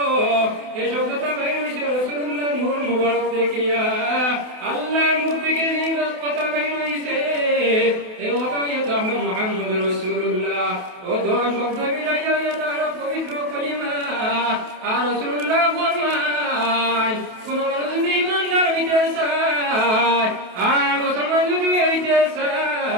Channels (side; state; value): left; late; 28 ms